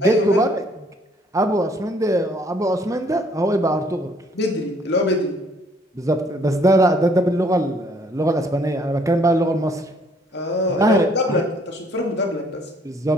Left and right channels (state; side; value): normal; both; correlation 0.63